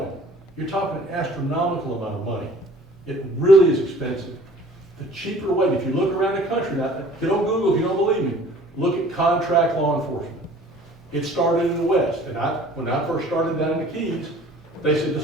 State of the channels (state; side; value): normal; both; correlation 0.50